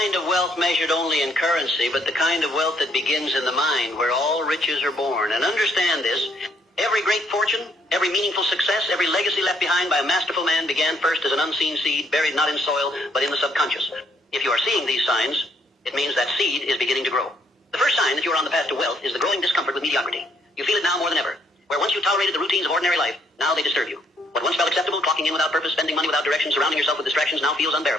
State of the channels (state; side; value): normal; both; correlation 0.69